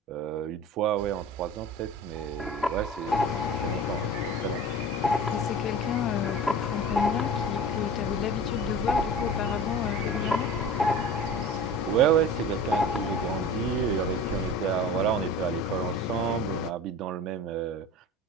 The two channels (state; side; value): normal; both; correlation 0.37